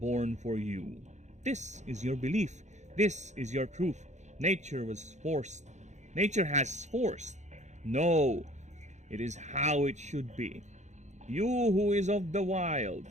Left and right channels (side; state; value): left; late; 0.34 ms